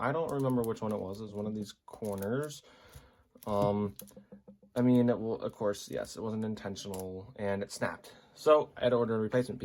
I don't remember which one it was. It was one of these corners. I mean, it will, of course, yes, it wasn't intentional and it snapped. So I had to order a replacement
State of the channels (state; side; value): identical; both; correlation 1.00